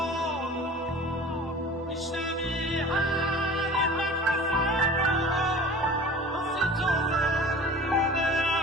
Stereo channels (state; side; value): normal; both; correlation 0.41